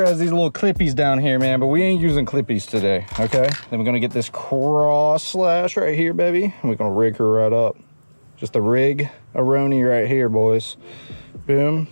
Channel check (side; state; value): both; inverted; correlation -1.00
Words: has these little clippies down here, man, but we ain't using clippies today, okay? Then we're gonna get this cross slash right here, baby. And we're gonna rig her right up. Just a rig-a-roni right here, boys. Boom,